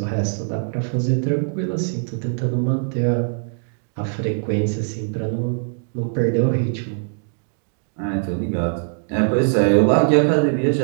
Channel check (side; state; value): left; silent; digital silence